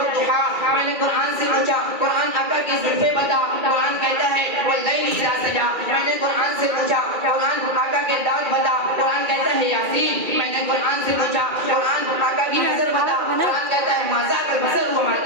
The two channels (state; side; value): late; left; 2.4 ms